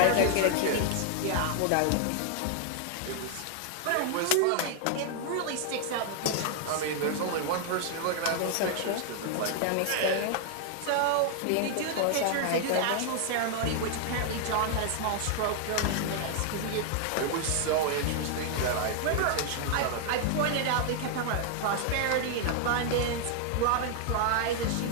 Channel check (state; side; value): different; both; correlation 0.00